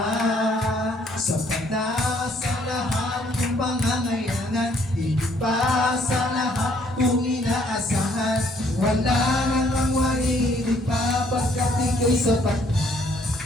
sapat na sa lahat ng pangangailangan. Higit pa sa lahat kung inaasahan. Wala nang ang mahigit pa, pagkat ika'y sapat na.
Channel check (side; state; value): both; normal; correlation 0.64